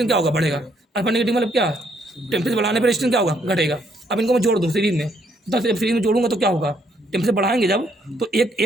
क्या होगा, बढ़ेगा। अल्फा नेगेटिव मतलब क्या, टेम्परेचर बढ़ाने पर रेजिस्टेंस क्या होगा, घटेगा। अब इनको मैं जोड़ दूँ सीरीज में, तो सीरीज में जोड़ूंगा तो क्या होगा, टेम्परेचर बढ़ाएंगे जब तो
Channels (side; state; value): both; normal; correlation 0.70